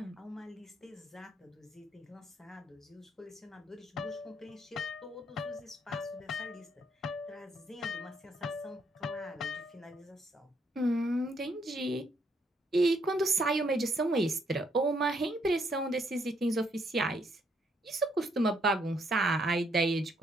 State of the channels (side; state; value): both; normal; correlation 0.72